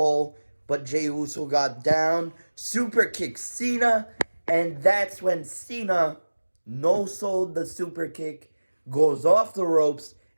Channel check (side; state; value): both; inverted; correlation -1.00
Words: But Jey Uso got down, super kicked Cena, and that's when Cena no-sold the super kick, goes off the ropes,